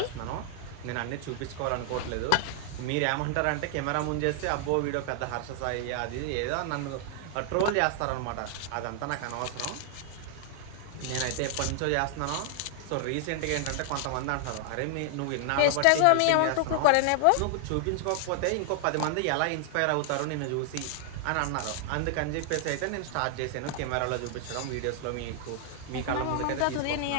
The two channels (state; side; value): different; both; correlation 0.00